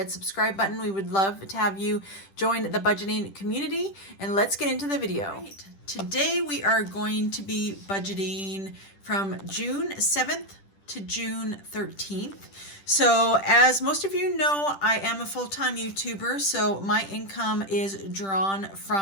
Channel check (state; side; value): late; right; 10 ms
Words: subscribe button. We would love to have you join the budgeting community, and let's get into the video. Right. Today we are going to be budgeting from June 7th to June 13th. So as most of you know, I am a full-time YouTuber, so my income is drawn